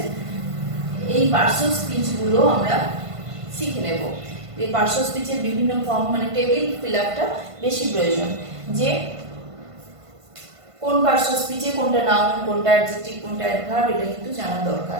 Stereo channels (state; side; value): late; left; 1.5 ms